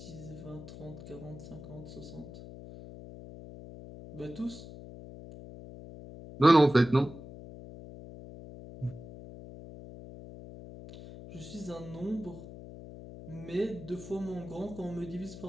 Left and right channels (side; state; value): left; noise; hum, 14 dB below the sound